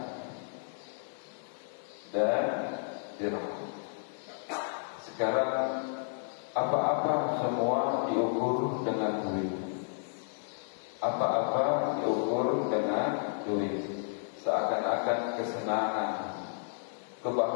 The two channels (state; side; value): silent; right; digital silence